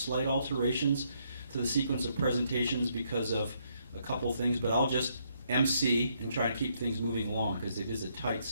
alterations to the sequence of presentations because of a couple things, but I'll just MC and try and keep things moving along because it is a tight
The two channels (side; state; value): both; inverted; correlation -0.73